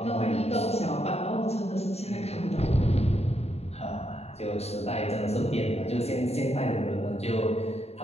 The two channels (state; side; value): late; right; 0.30 ms